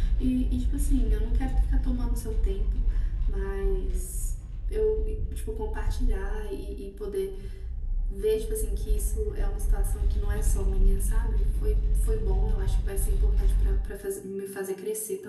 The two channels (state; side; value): identical; both; correlation 1.00